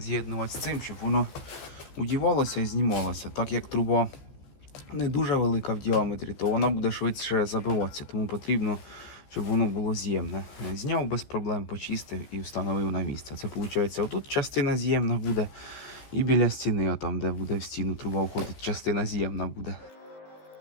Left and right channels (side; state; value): right; late; 14 ms